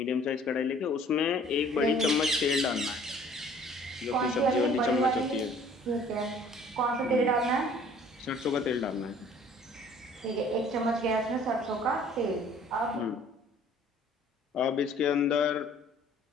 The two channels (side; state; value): both; normal; correlation 0.54